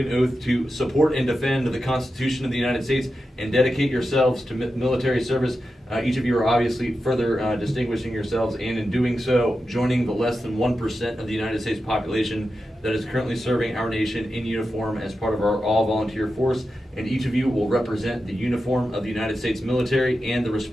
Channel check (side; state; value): both; normal; correlation 0.90